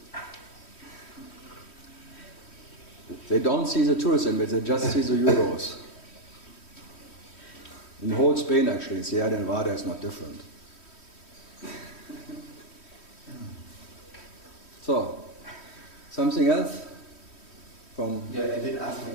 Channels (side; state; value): right; late; 3.1 ms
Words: They don't see the tourism, they just see the euros. In the whole Spain, actually, Sierra Nevada is not different. So, something else? I didn't ask my